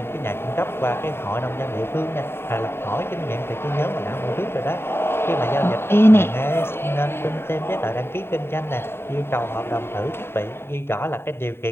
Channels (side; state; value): right; late; 0.11 ms